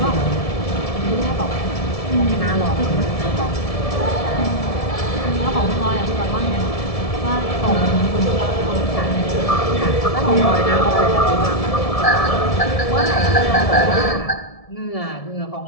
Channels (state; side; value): late; right; 1.7 ms